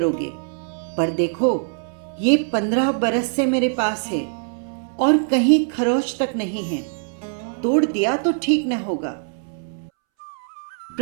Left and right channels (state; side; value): silent; left; 64 dB below the other